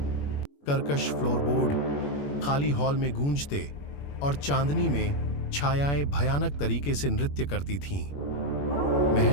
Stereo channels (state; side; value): late; right; 21 ms